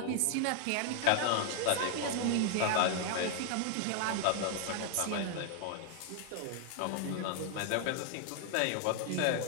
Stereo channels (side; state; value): both; different; correlation 0.00